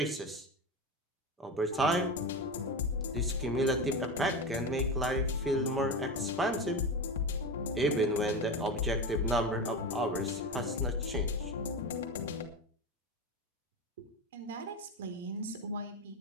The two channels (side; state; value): both; normal; correlation 0.21